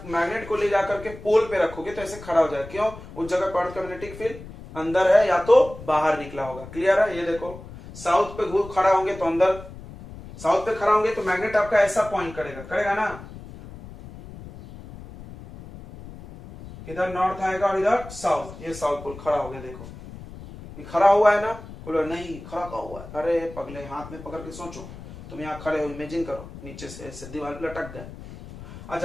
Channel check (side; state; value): left; noise; rumble, 15 dB below the sound